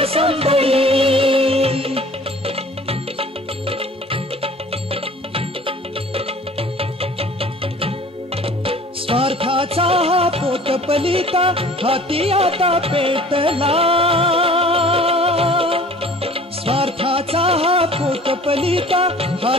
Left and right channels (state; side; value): normal; both; correlation 0.48